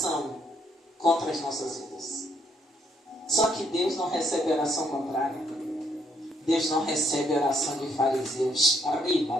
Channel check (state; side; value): normal; both; correlation 0.71